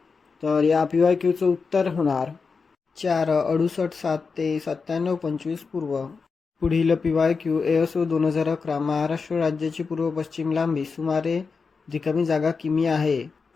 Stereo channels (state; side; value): quieter; right; 4.9 dB